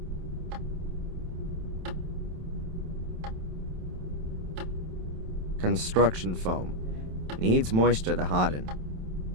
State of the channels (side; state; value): left; late; 27 ms